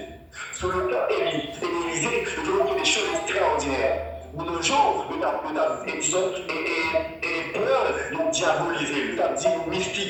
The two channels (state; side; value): identical; both; correlation 1.00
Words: Sur le plan Élysée, nous avons fait des choses extraordinaires. De nos jours, nous avons peur de diaboliser, nous avons dit